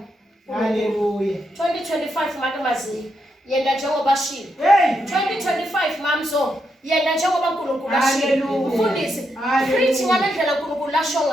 Hallelujah. 2025 makamazi yenda njengoba shilo. 2025 mamzo yena njengoba uNkulunkulu ashilo ufundise preach ngalendlela uNkulunkulu lasho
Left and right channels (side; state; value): both; normal; correlation 0.82